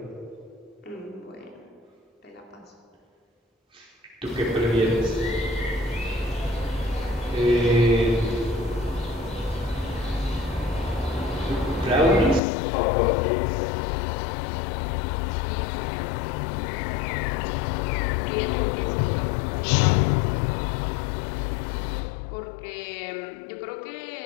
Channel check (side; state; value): right; drops out; at 12.4 s